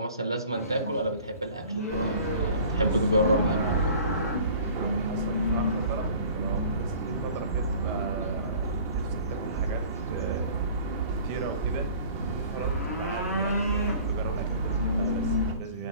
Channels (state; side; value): inverted; both; correlation -0.47